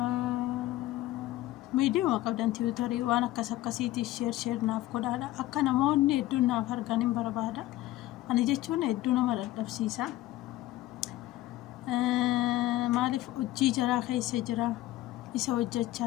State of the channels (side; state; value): right; quieter; 15.8 dB